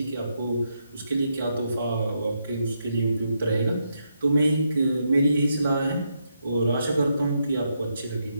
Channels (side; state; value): both; inverted; correlation -0.81